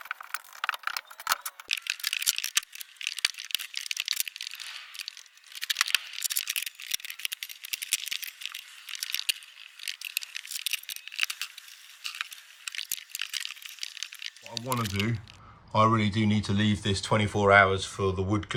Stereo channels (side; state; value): both; identical; correlation 1.00